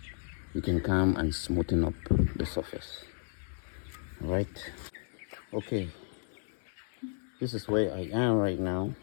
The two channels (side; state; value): right; silent; digital silence